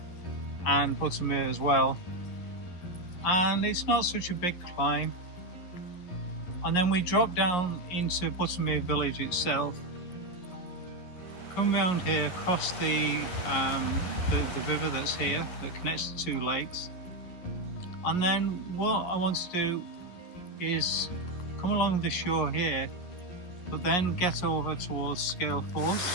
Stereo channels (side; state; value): right; late; 11 ms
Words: and Buttermere as well. And it's not such a big climb. And then we drop down into Buttermere village itself. Come round here, cross the river that's here that connects the two lakes. And then what I want to do is come along the shore here, but then get over towards Scale Force.